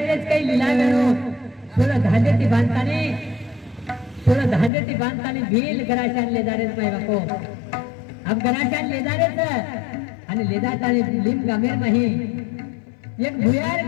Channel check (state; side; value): drops out; right; at 4.7 s